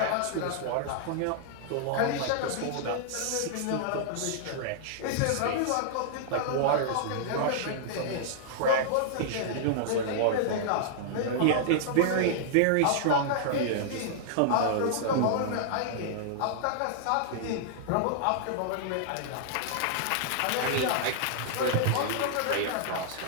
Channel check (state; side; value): different; both; correlation -0.01